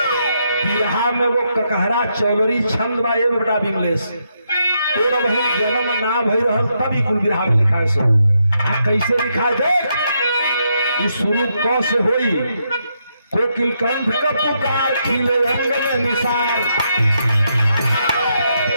बिरहा में वो ककहरा चौलरी छंद बा ये बेटा विमलेश, तेरा बहन जन्म ना भई रहल तभी कुल बिरहा में लिखा है। सो कैसे लिखा है देख, इस शुरू क से होई, कोकिल कंठ का पुकार खिले रंग में निसार।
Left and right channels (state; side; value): inverted; both; correlation -0.79